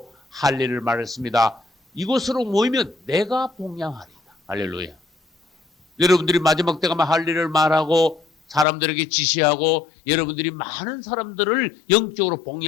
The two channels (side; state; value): right; drops out; at 8.7 s